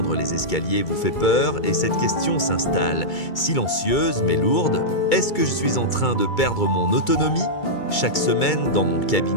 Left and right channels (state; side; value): late; right; 2.3 ms